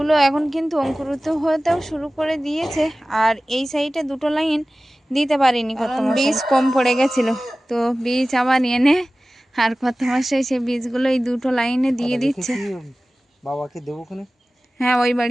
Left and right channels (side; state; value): both; normal; correlation 0.97